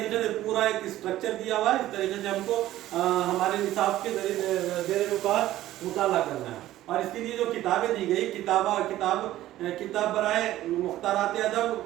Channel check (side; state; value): left; quieter; 14.4 dB